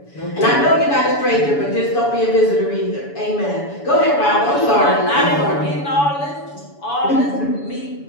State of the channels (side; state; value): right; late; 7.0 ms